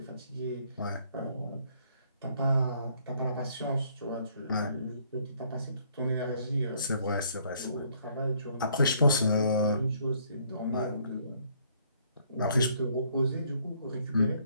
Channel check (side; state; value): both; inverted; correlation -0.65